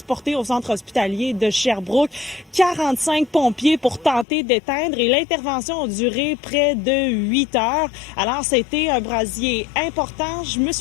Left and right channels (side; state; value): right; drops out; at 4.2 s